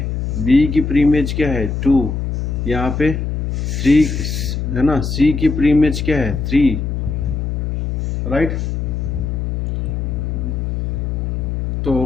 बी की प्री इमेज क्या है 2, यहाँ पे 3 है ना, सी की प्री इमेज क्या है 3, राइट।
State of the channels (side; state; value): left; noise; hum, 1 dB below the sound